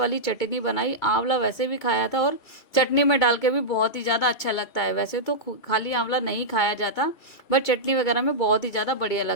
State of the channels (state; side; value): late; right; 2.3 ms